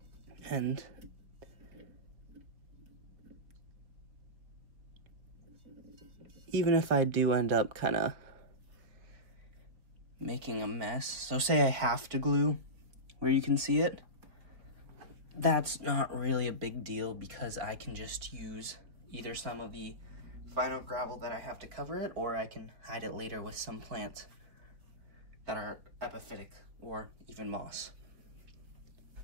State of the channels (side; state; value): left; late; 4.2 ms